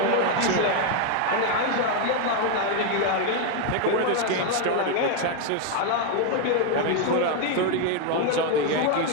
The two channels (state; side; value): different; both; correlation 0.01